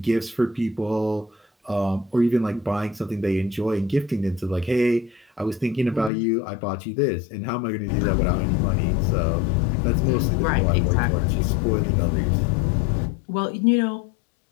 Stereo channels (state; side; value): drops out; right; at 6.1 s